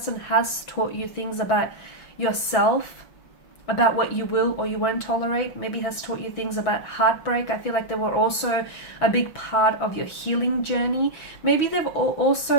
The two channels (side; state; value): right; late; 6.1 ms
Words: has taught you things about yourself, about what you will or you won't tolerate. Maybe has taught you things about heartbreak. I feel like they were also a big part of your healing journey. Maybe they've